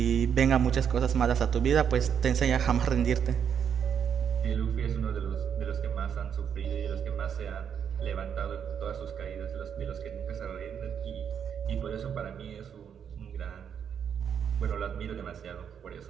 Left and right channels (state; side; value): quieter; left; 7.9 dB